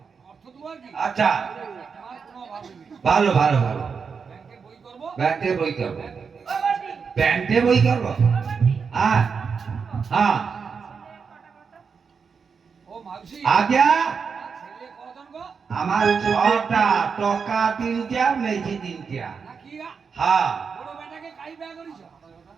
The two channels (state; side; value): quieter; left; 5.7 dB